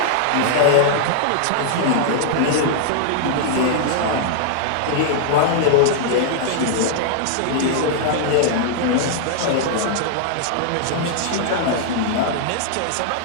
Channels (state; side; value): different; both; correlation -0.01